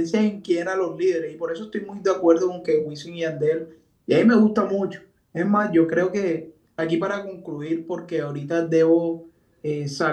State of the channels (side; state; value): both; identical; correlation 1.00